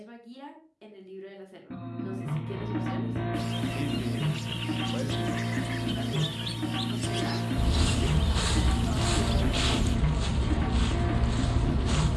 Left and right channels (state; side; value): identical; both; correlation 1.00